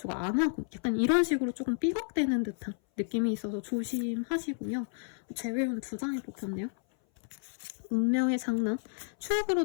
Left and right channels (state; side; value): silent; right; 57 dB below the other